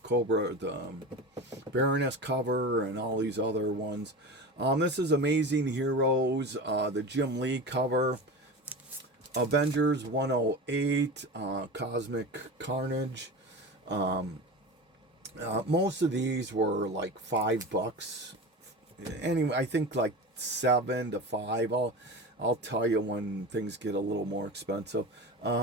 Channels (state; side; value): normal; both; correlation 0.29